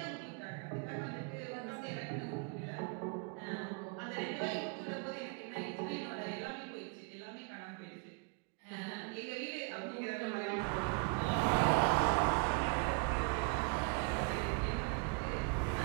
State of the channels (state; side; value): quieter; left; 34.0 dB